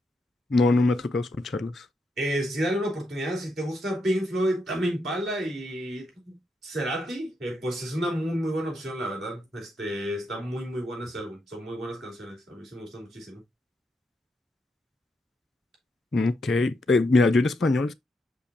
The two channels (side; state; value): both; normal; correlation 0.81